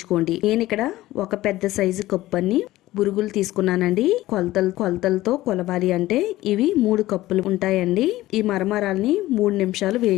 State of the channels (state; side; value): quieter; right; 16.5 dB